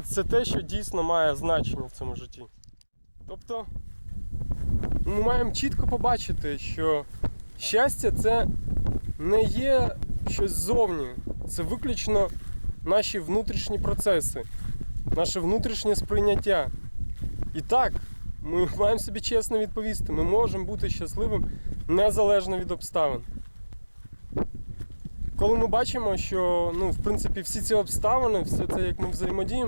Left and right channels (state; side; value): inverted; both; correlation -1.00